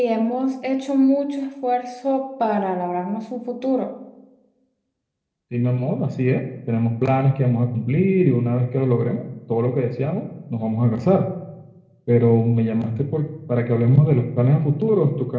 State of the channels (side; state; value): both; identical; correlation 1.00